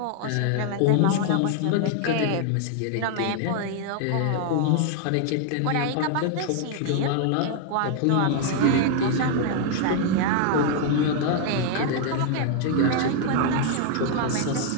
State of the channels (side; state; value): both; different; correlation 0.00